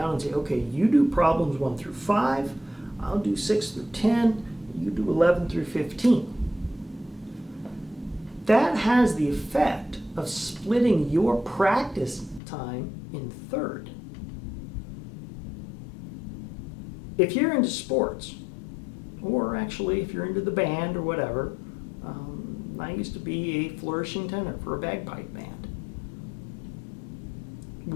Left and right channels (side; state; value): right; drops out; at 12.4 s